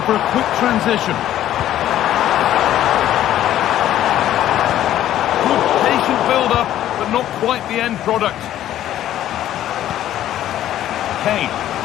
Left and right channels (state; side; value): quieter; right; 12.3 dB